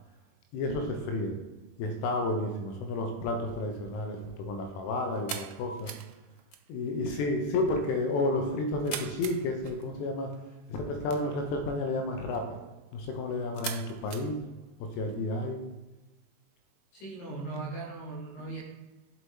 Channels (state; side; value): late; right; 21 ms